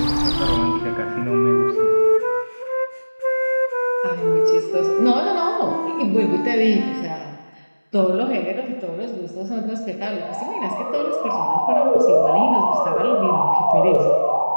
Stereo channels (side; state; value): both; inverted; correlation -1.00